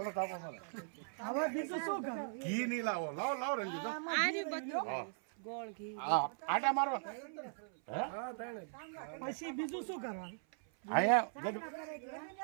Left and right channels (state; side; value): silent; left; 51 dB below the other